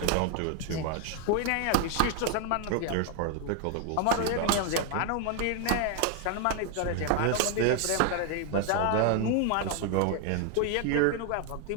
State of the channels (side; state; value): both; different; correlation 0.00